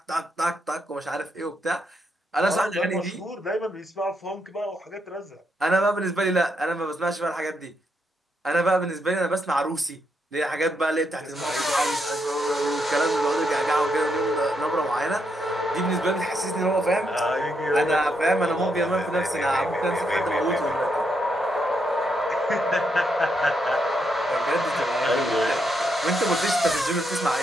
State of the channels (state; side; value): normal; both; correlation 0.79